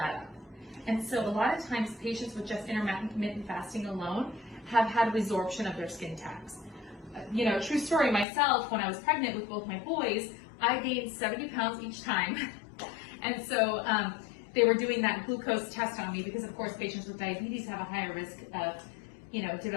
up. And so a lot of times patients with just intermittent fasting alone have had resorption of their skin tags. True story, myself, when I was pregnant with both my boys, I gained 70 pounds each time. And so they were doing that glucose test on me, because of course patients with diabetes have a higher risk of,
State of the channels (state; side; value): drops out; right; at 8.2 s